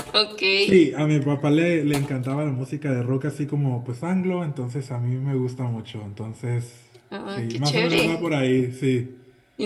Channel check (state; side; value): identical; both; correlation 1.00